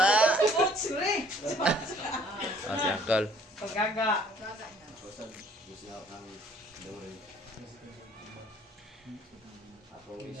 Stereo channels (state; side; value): normal; both; correlation 0.57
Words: Sure. Si Uncle. Paggaga. Ako